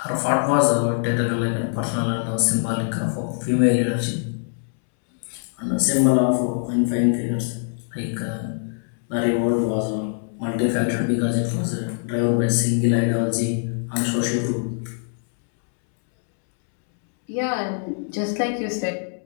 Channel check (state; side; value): silent; right; 63 dB below the other